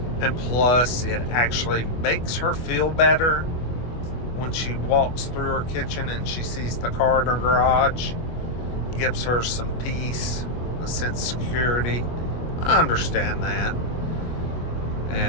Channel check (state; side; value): late; right; 25 ms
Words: And plus, it actually makes her feel better when she walks through her kitchen and she sees the car in her garage. Gives her some peace, a sense of security. I understand that.